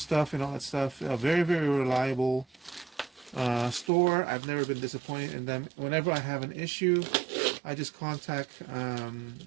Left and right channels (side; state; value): left; drops out; at 3.9 s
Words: and all that stuff. Very, very reliable store. I've never been disappointed in them. Whenever I have an issue, I just contact